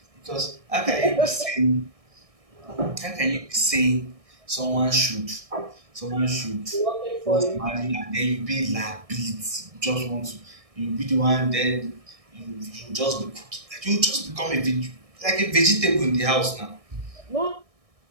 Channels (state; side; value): late; left; 1.6 ms